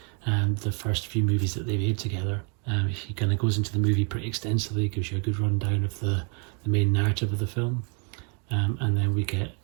and the first few movies that they made together. He kind of goes into the movie pretty extensively, gives you a good rundown of the main narrative of the film. And then we get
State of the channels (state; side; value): quieter; left; 36.9 dB